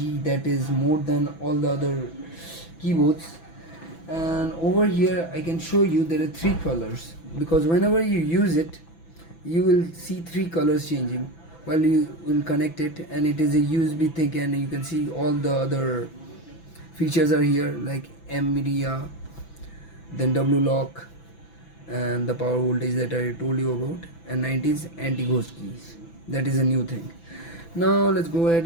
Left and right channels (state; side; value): late; right; 6.0 ms